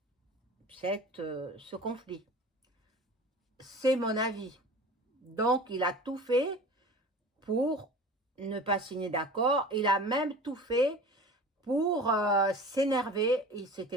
ce conflit. C'est mon avis. Donc, il a tout fait pour ne pas signer d'accord. Il a même tout fait pour s'énerver. Il s'est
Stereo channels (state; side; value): normal; both; correlation 0.38